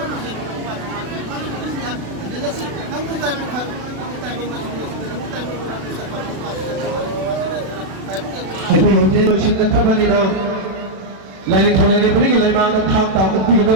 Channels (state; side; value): late; left; 36 ms